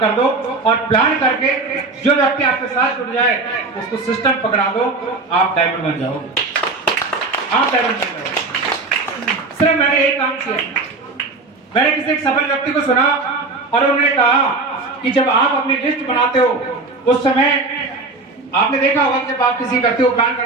दो और प्लान करके जो व्यक्ति आपके साथ जुड़ जाए उसको सिस्टम पकड़ा दो, आप डायमंड बन जाओगे, आप डायमंड बन जाओगे। सिर्फ मैंने एक काम किया, मैंने किसी एक सफल व्यक्ति को सुना और उन्होंने कहा कि जब आप अपनी लिस्ट बनाते हो उस समय आपने देखा होगा जब आप किसी व्यक्ति को प्लान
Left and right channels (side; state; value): left; quieter; 3.5 dB